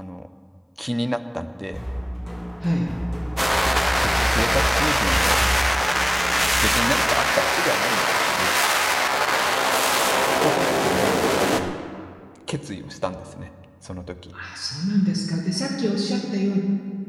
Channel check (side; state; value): both; identical; correlation 1.00